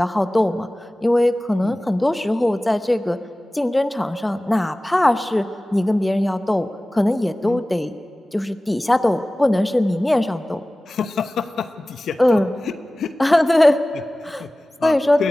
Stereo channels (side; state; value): both; normal; correlation 0.97